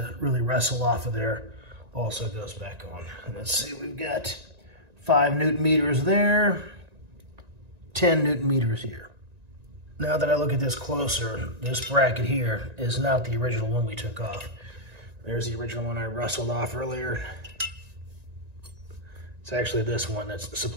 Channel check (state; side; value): late; left; 1.9 ms